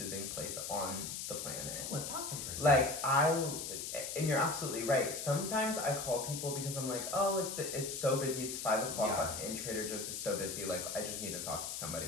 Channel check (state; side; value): noise; left; hiss, 5 dB below the sound